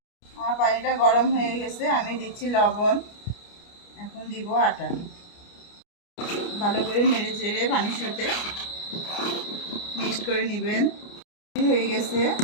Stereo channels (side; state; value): right; late; 29 ms